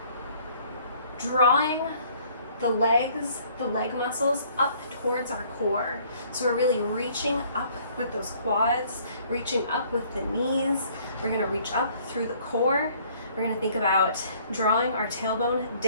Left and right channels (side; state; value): both; inverted; correlation -0.59